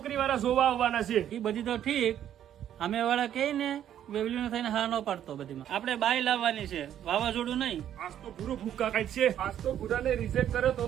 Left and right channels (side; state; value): left; quieter; 10.5 dB